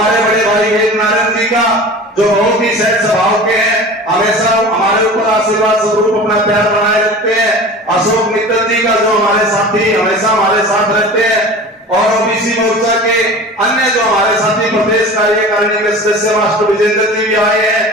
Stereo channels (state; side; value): normal; both; correlation 0.37